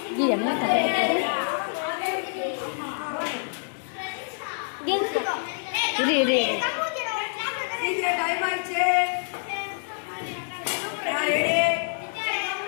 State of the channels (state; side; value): silent; right; digital silence